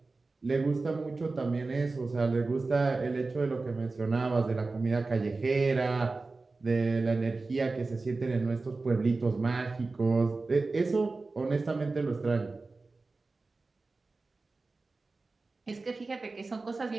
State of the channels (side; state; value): left; quieter; 3.7 dB